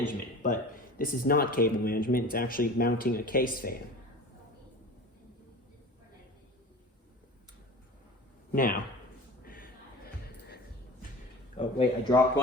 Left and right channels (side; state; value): both; normal; correlation 0.37